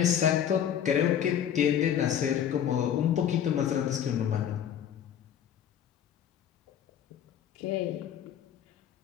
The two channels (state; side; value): quieter; right; 9.4 dB